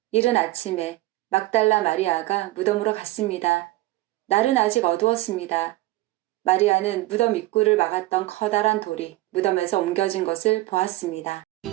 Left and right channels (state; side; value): quieter; left; 18.0 dB